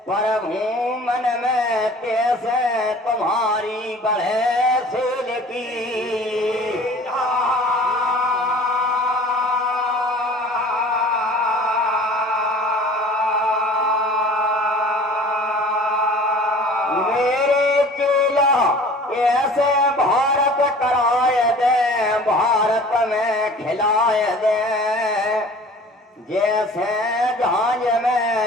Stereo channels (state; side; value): normal; both; correlation 0.45